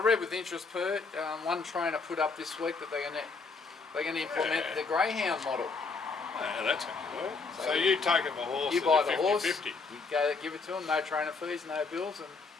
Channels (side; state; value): right; quieter; 4.4 dB